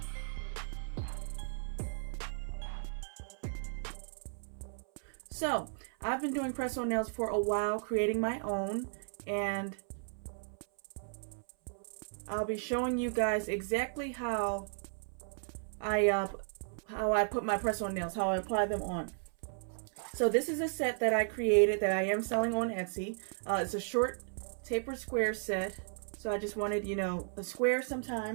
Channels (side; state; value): left; silent; 54 dB below the other